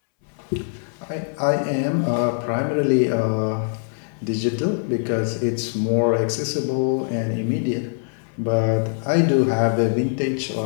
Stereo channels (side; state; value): right; silent; 64 dB below the other